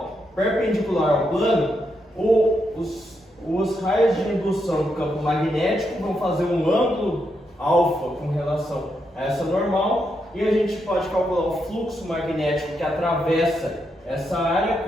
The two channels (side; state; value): both; normal; correlation 0.81